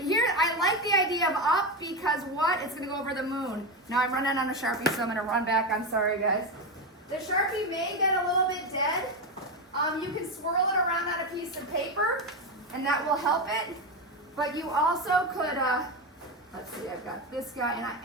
I like the idea of up because what? It's gonna go over the moon. Now I'm running on a Sharpie, so I'm gonna run back. I'm sorry, guys. The Sharpie may get a little bit dead. You can swirl it around on a piece of paper, and that will help it. But you also could, let's see, I've got this guy, and I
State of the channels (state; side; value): normal; both; correlation 0.13